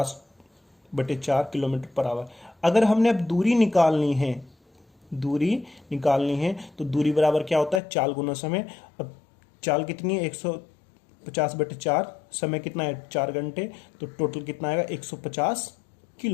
kilometre per hour. अगर हमने अब दूरी निकालनी है तो दूरी बराबर क्या होता है, चाल गुना समय। अब चाल कितनी है 150/4, समय कितना है 4 घंटे, तो टोटल कितना आएगा 150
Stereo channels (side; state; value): right; drops out; at 7.8 s